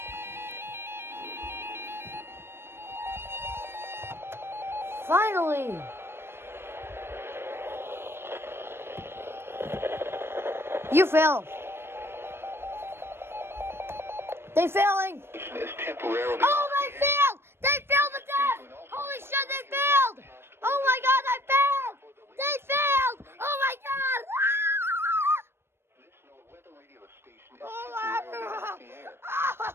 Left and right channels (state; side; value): late; left; 0.12 ms